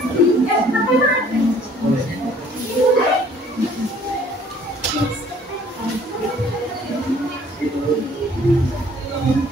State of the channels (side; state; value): both; normal; correlation 0.57